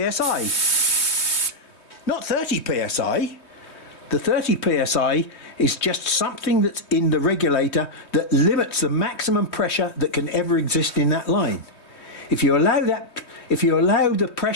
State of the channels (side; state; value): right; late; 3.2 ms